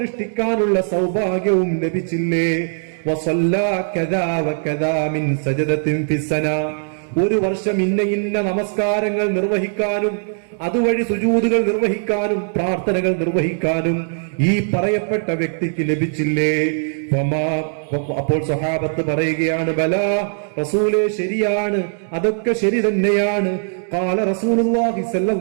സൗഭാഗ്യവും ലഭിച്ചില്ലേ? വസല്ലാ കദാ വകദാ മിൻ സജദത്തിൻ ഫിസ്സന, 1 വർഷം ഇന്ന നമസ്കാരങ്ങൾ നിർവഹിക്കാനും അതുവഴി സുജൂദുകൾ നിർവഹിക്കാനും പ്രാർത്ഥനകൾ നിർവഹിക്കാനും ഈ പറയപ്പെട്ട വ്യക്തിക്ക് ലഭിച്ചില്ലേ? അപ്പോൾ സ്വഹാബത്ത് പറയുകയാണ്, ബലാ റസൂലേ, ശരിയാണ്, അതൊക്കെ ശരി തന്നെയാണ്. ഖാല റസൂലുള്ളാഹി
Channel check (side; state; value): left; silent; digital silence